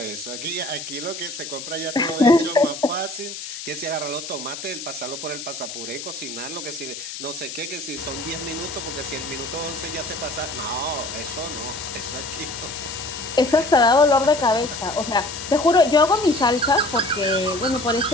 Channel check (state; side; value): noise; left; hiss, 9 dB below the sound